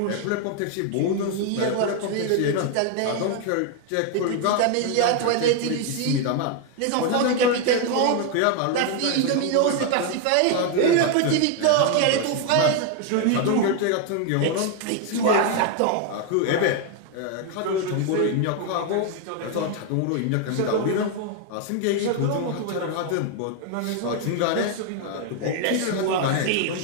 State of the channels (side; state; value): both; different; correlation 0.01